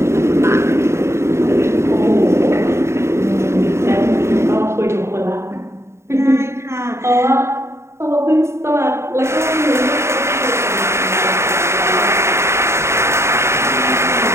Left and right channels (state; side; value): late; left; 0.13 ms